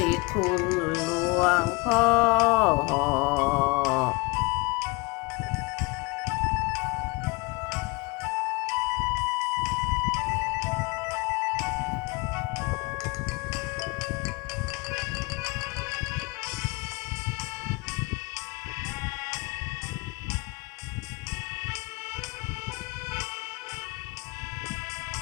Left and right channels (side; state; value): right; quieter; 26.4 dB